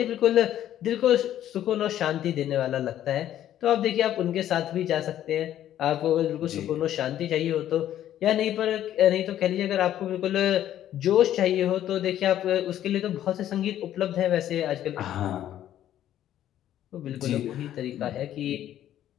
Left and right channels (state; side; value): quieter; right; 11.7 dB